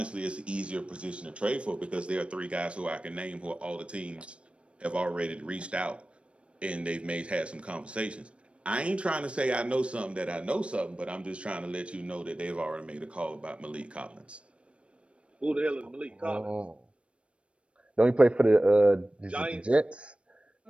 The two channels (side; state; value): left; late; 0.059 ms